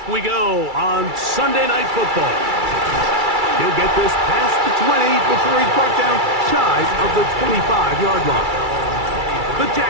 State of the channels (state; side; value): late; left; 2.3 ms